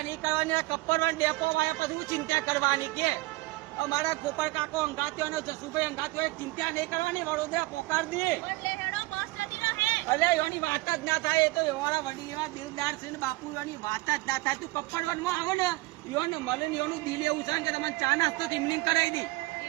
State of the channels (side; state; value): left; quieter; 21.4 dB